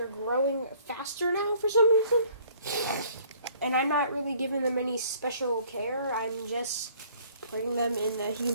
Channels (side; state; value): both; inverted; correlation -0.57